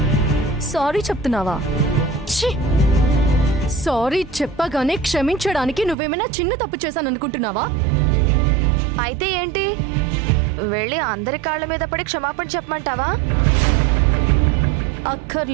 సారీ చెప్తున్నావా? సారీ చెప్పగానే క్షమించడానికి నువ్వేమైనా చిన్న తప్పు చేశాననుకుంటున్నావా? అయితే ఏంటి, వెళ్ళి అందరి కాళ్ళ మీద పడి క్షమాపణ చెప్పమంటావా?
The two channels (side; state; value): left; drops out; at 6.0 s